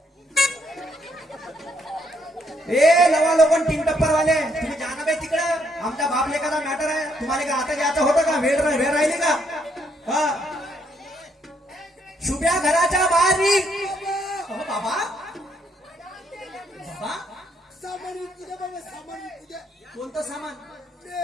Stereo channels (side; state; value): both; normal; correlation 0.72